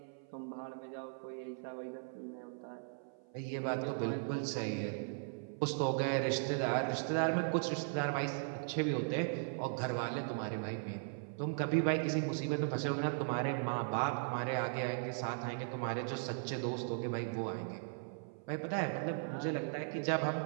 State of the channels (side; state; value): left; silent; 52 dB below the other